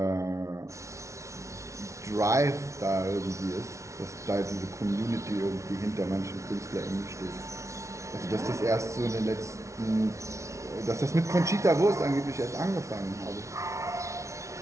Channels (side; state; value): left; late; 0.14 ms